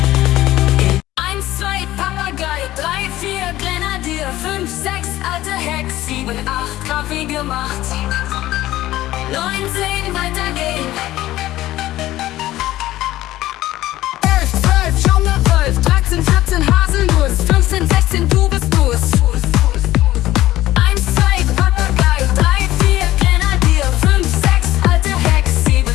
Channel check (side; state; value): right; quieter; 15.4 dB